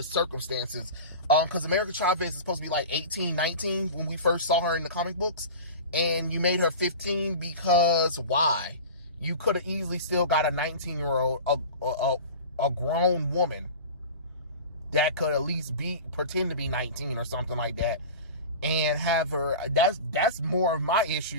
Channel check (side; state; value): both; inverted; correlation -0.33